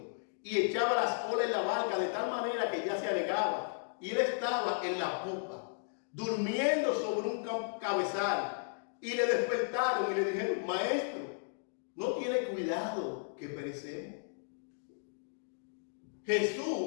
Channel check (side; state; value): right; silent; digital silence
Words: y echaba las olas en la barca de tal manera que ya se anegaba. Y él estaba en la popa, durmiendo sobre un cabezal. Y le despertaron y le dijeron, maestro, ¿no tiene cuidado que perecemos?